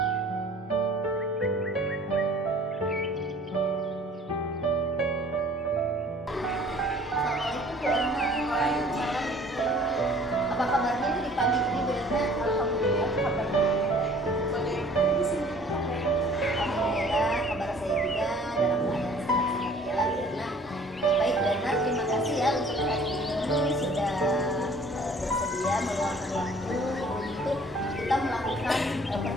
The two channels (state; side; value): normal; both; correlation 0.53